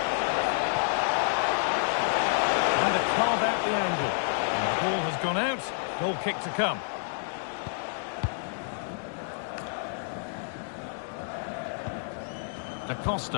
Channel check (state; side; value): silent; right; digital silence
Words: Trying to carve out the angle. And the ball has gone out. Goal kick to come. Da